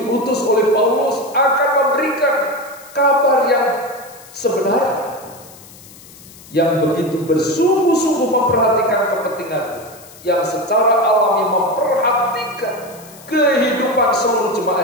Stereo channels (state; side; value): noise; left; hiss, 21 dB below the sound